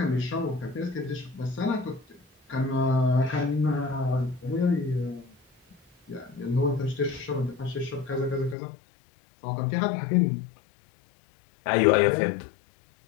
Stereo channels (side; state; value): right; drops out; at 8.6 s